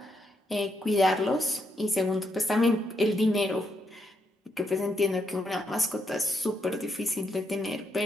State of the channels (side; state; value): both; normal; correlation 0.79